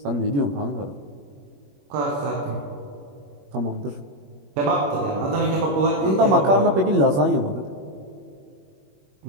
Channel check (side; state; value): left; late; 21 ms